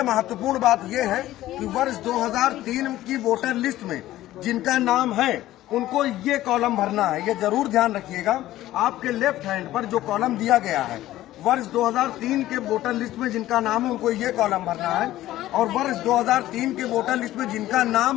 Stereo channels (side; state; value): right; quieter; 14.8 dB